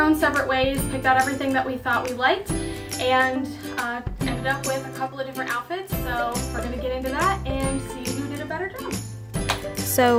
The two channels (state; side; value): identical; both; correlation 1.00